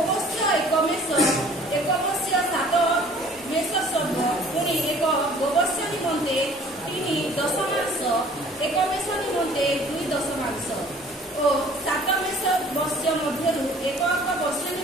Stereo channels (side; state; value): both; normal; correlation 0.52